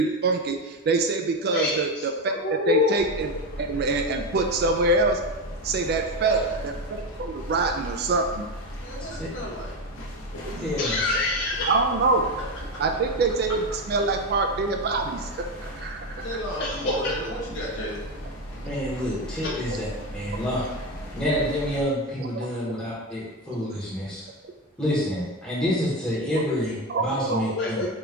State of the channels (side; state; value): both; normal; correlation 0.14